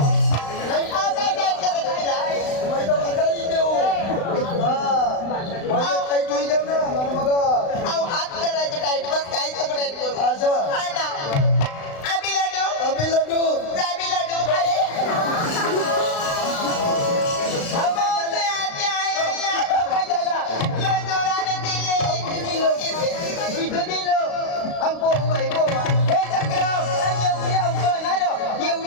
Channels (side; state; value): right; late; 35 ms